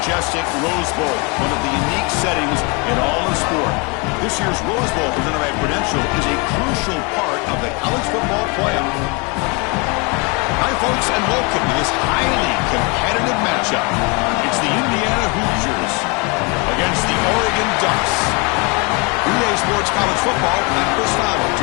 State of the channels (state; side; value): quieter; right; 30.7 dB